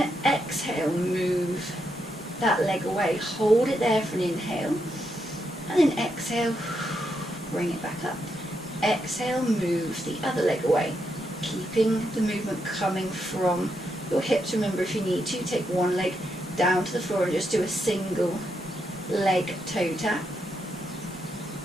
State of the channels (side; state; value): both; normal; correlation 0.81